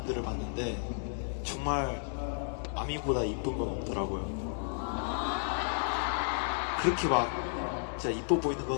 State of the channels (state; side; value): silent; right; digital silence